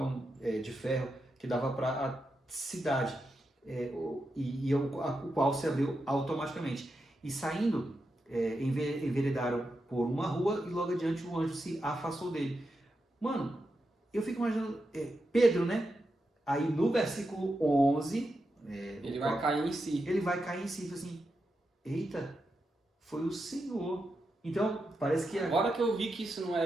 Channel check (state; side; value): normal; both; correlation 0.87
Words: de ferro que dava para a cidade, o qual se abriu automaticamente. E saindo, enveredaram por uma rua e logo adiante o anjo se afastou dele. Mano, eu fico imaginando, Pedro, né? Aí no versículo 11, Ele vai cair em si. ele vai cair em si e fala assim, eita, foi o Senhor. Então, parece que Agora que eu vi que isso não